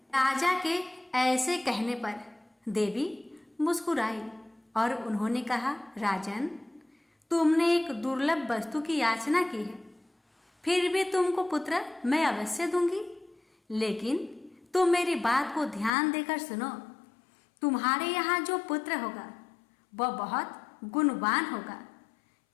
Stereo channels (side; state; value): right; drops out; at 15.9 s